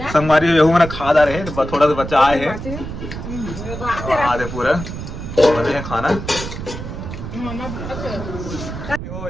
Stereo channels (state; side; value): noise; right; rumble, 8 dB below the sound